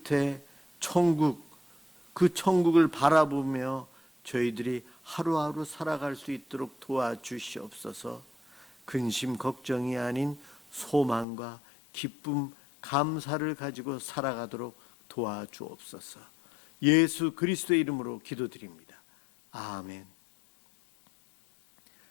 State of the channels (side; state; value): right; drops out; at 11.2 s